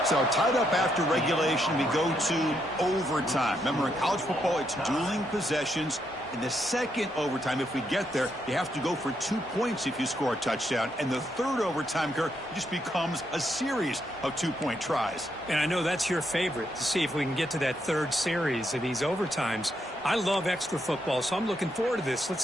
So tied up after regulation, we go to overtime. Remember, in college football, it's dueling possessions. In the second overtime, if we get there, you have to go for 2 points if you score a touchdown. And the third overtime, Kirk, just becomes a series of 2-point tries. And I know that's your favorite, to see if we can get to that third series of these overtimes. I love extra football, so I'm looking forward to this. Let's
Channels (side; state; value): right; noise; rumble, 28 dB below the sound